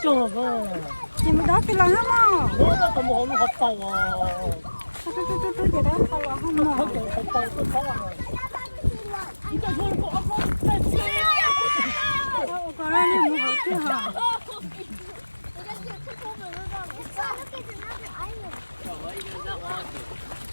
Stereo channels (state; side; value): inverted; both; correlation -1.00